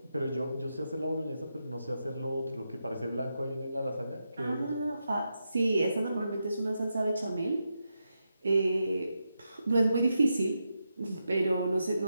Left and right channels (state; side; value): inverted; both; correlation -0.86